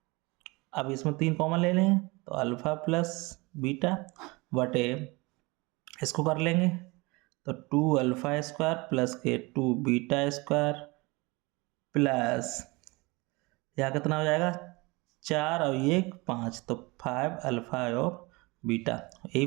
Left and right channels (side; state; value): left; quieter; 25.0 dB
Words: अब इसमें 3 कॉमन ले लेंगे, तो अल्फा प्लस बीटा बटे, इसको कर लेंगे, तो 2 अल्फा स्क्वायर प्लस के 2 बीटा स्क्वायर प्लस, यहाँ कितना हो जाएगा 4 और 1 5, तो 5 अल्फा और बीटा, यही